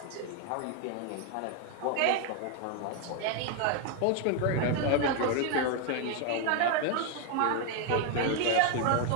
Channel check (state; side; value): different; both; correlation 0.01